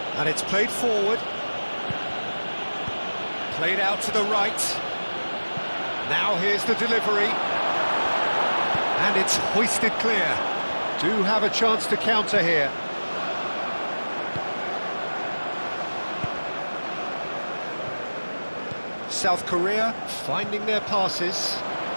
And it's played forward. Played out to the right. Now here's the delivery. And it's hoisted clear. Do have a chance to counter here. South Korea finding their passes.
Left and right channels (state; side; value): inverted; both; correlation -1.00